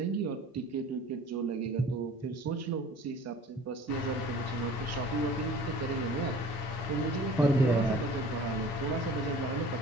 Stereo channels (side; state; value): both; normal; correlation 0.46